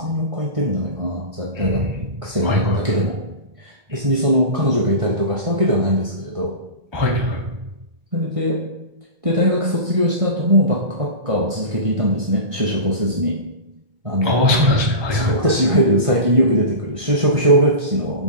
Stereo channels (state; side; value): late; left; 1.6 ms